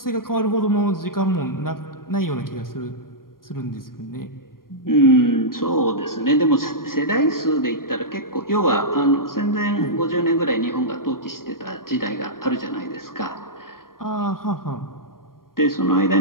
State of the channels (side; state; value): right; late; 0.91 ms